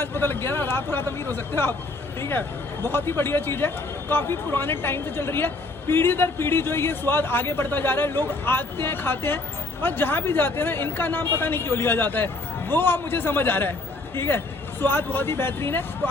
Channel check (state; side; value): quieter; right; 3.2 dB